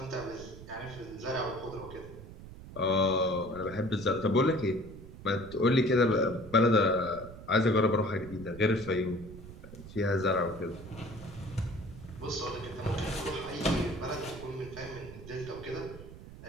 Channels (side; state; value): right; noise; rumble, 15 dB below the sound